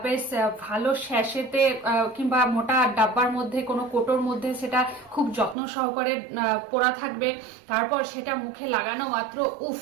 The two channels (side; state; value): left; drops out; at 5.6 s